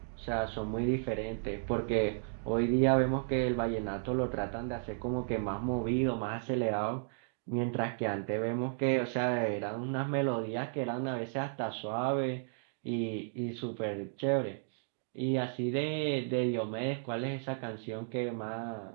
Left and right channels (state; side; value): silent; left; digital silence